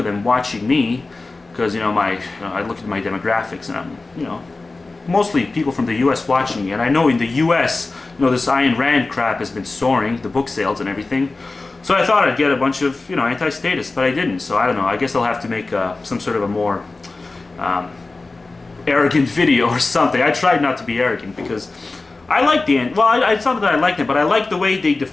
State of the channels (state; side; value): quieter; right; 3.5 dB